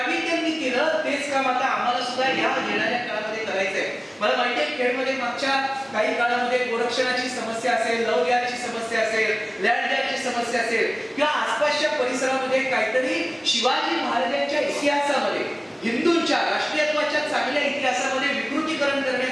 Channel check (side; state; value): both; identical; correlation 1.00